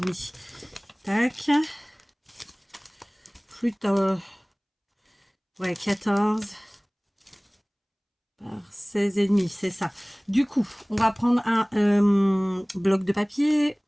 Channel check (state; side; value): identical; both; correlation 1.00